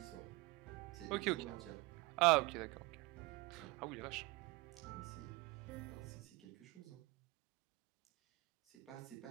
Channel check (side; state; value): left; quieter; 22.6 dB